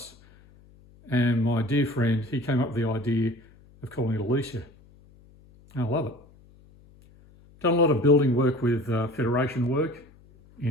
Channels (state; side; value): noise; left; hum, 26 dB below the sound